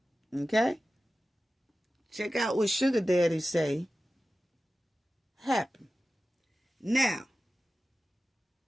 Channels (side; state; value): both; normal; correlation 0.94